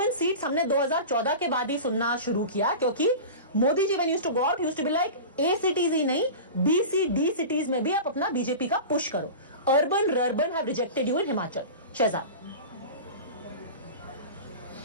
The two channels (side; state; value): both; inverted; correlation -0.32